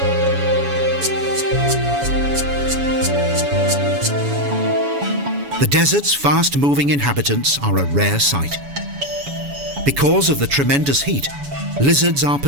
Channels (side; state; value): left; late; 7.1 ms